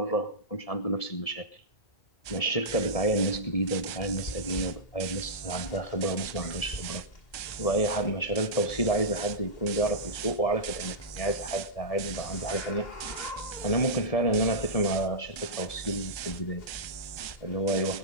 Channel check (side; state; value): right; late; 1.3 ms